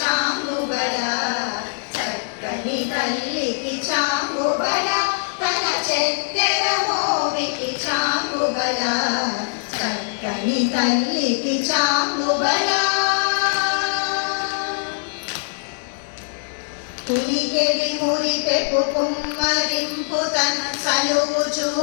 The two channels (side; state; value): right; silent; digital silence